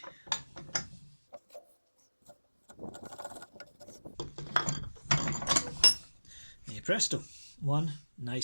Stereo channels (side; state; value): both; inverted; correlation -1.00